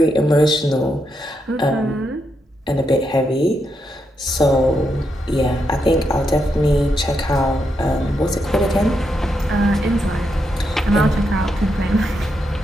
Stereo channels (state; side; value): normal; both; correlation 0.82